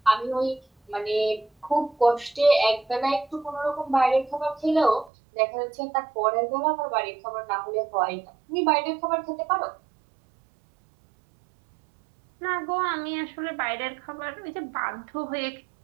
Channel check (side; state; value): left; drops out; at 5.1 s